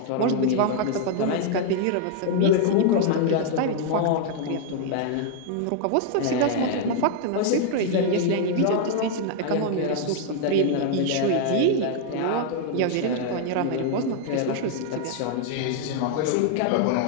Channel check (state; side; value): different; both; correlation 0.00